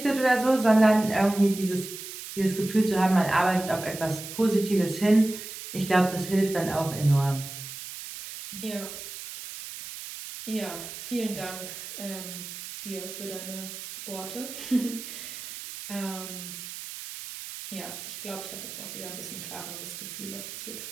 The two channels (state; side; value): noise; right; hiss, 10 dB below the sound